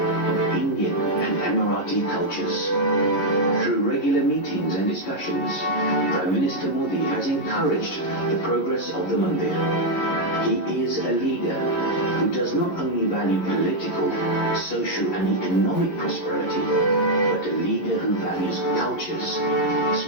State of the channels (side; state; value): right; late; 11 ms